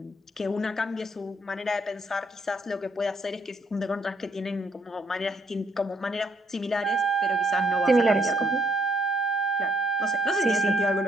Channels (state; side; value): normal; both; correlation 0.70